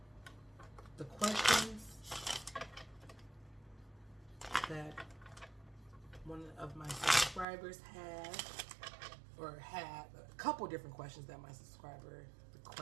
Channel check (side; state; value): left; drops out; at 7.5 s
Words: the questions that one of my subscribers had, or had a couple different questions that my subscriber